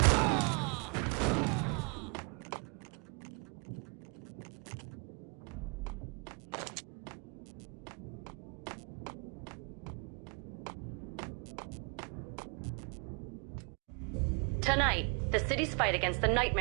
Tonight, the city's fight against the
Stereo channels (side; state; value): left; quieter; 34.4 dB